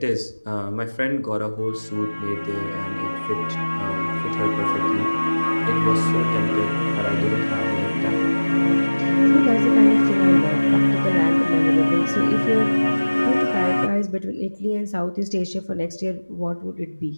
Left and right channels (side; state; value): both; inverted; correlation -1.00